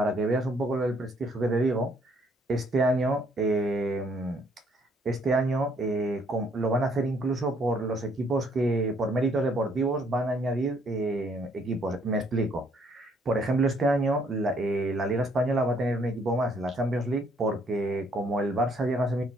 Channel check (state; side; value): normal; both; correlation 0.66